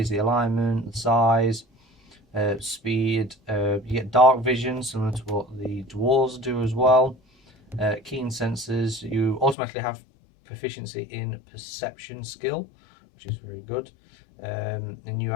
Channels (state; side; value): drops out; right; at 9.6 s